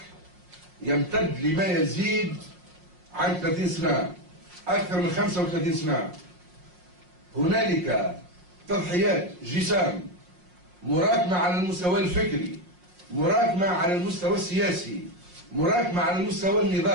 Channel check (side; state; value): left; late; 5.6 ms